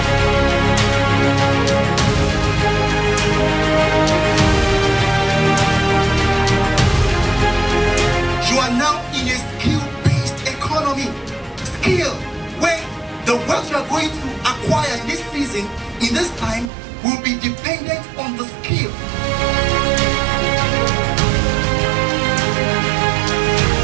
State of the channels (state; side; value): drops out; left; at 16.7 s